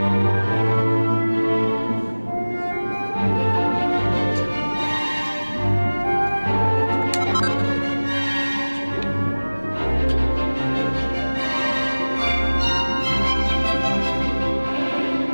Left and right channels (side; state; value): both; inverted; correlation -1.00